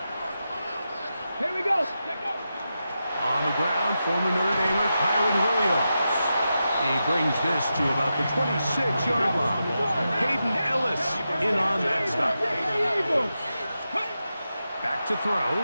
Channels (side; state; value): both; inverted; correlation -0.89